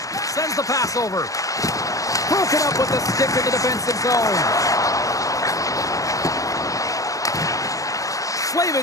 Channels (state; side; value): late; right; 0.16 ms